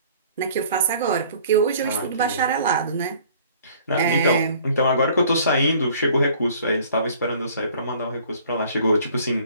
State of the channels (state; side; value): inverted; both; correlation -0.54